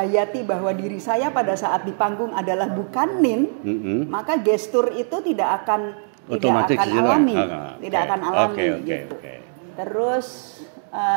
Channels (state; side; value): silent; left; digital silence